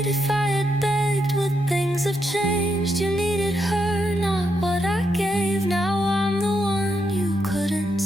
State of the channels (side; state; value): both; normal; correlation 0.81